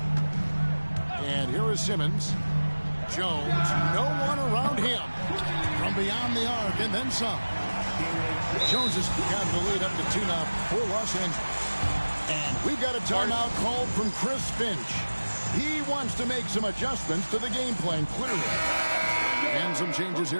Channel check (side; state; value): both; inverted; correlation -1.00